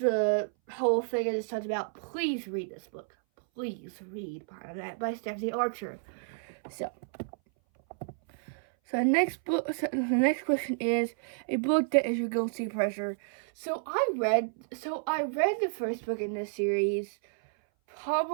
whole thing I just talked about, please read this book. Please read Behind That by Stephanie Archer. So the next question is a book that is your guilty pleasure. So I read the first book in this series.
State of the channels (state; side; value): silent; left; 57 dB below the other